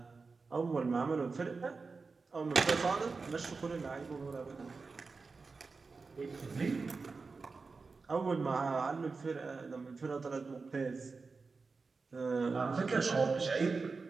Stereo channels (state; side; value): quieter; left; 4.3 dB